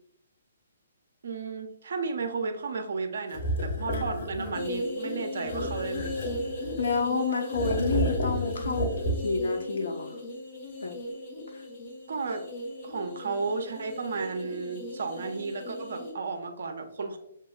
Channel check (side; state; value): both; inverted; correlation -0.56